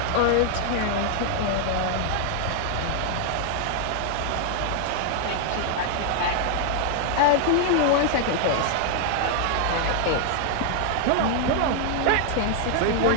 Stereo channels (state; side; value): different; both; correlation 0.00